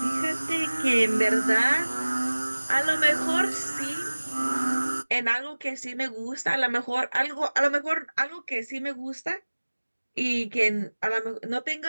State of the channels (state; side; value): inverted; both; correlation -1.00